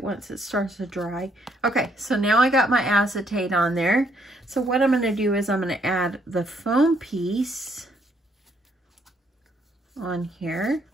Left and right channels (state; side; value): normal; both; correlation 0.70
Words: once it starts to dry. Okay, so now I got my acetate on there. So what I'm going to do is I'm going to add the foam piece on here.